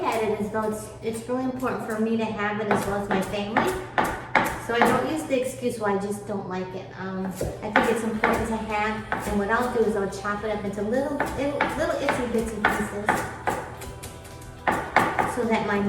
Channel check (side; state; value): both; identical; correlation 1.00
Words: at it as though it's really important for me to have it as well as my family. So I don't use the excuse why I just don't like it. I think it's important to have, and what I'll do is I'll chop it up into little itsy bitsy pieces so that my